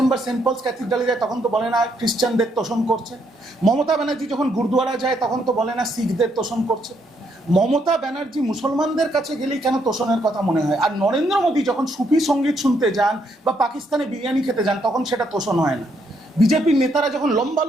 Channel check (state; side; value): normal; both; correlation 0.74